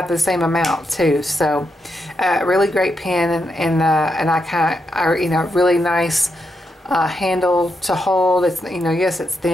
the same amount too. So really great pen, and I really nice handle to hold. It's yes, it's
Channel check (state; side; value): normal; both; correlation 0.83